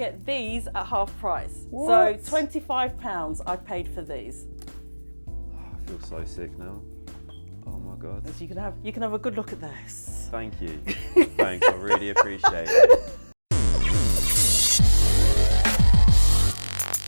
these at half price. What? So £25 I paid for these. I feel so sick now. Oh my God. So you can have a good look at this. Thank you. Thanks, I really appreciate it.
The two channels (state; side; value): inverted; both; correlation -1.00